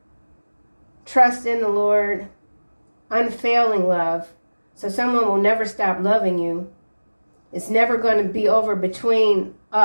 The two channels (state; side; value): inverted; both; correlation -1.00